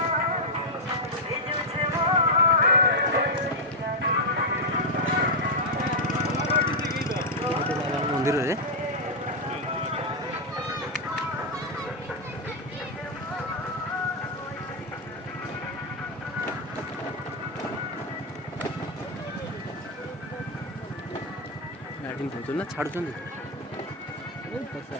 ମନ୍ଦିରରେ ଗାଡ଼ି ନେଉଛନ୍ତି ନା ଛାଡ଼ୁଛନ୍ତି?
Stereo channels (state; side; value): normal; both; correlation -0.01